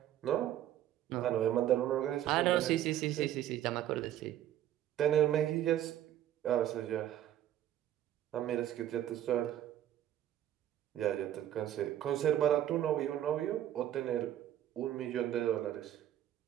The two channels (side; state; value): left; quieter; 11.9 dB